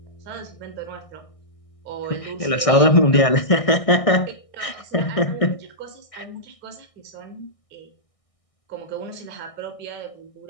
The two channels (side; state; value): right; late; 1.6 ms